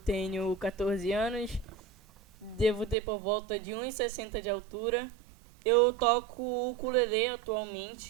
14 anos, devo ter por volta de 1,60 de altura. Eu toco ukulele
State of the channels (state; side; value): drops out; left; at 3.0 s